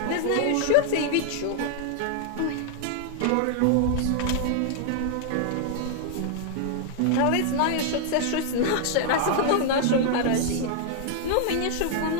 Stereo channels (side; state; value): both; different; correlation 0.00